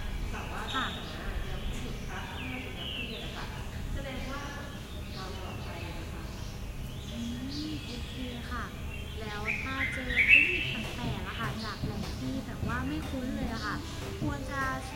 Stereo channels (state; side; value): identical; both; correlation 1.00